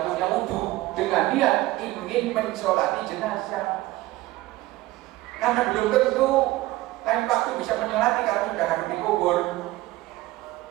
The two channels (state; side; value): quieter; left; 17.7 dB